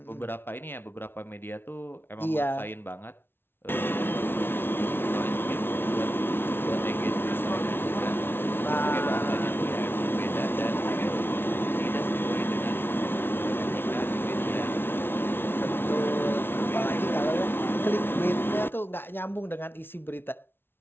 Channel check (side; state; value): right; late; 0.11 ms